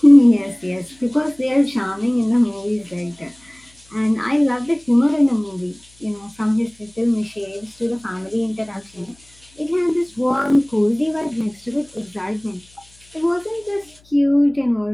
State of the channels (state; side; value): noise; left; hum, 29 dB below the sound